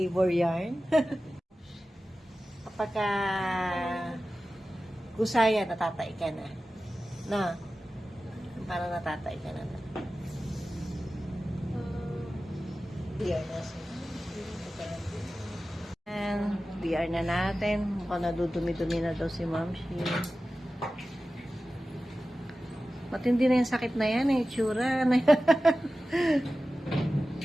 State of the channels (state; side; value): normal; both; correlation 0.95